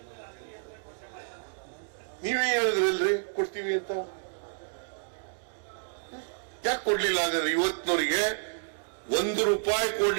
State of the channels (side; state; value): left; silent; digital silence